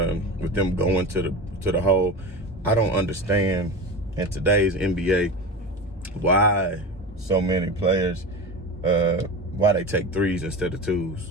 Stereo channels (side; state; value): both; normal; correlation 0.27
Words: with them going to the hole. I don't understand in today's NBA why so many players, why they take 3s instead of